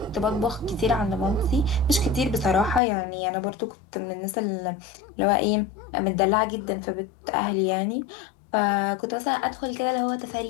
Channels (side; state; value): right; drops out; at 2.8 s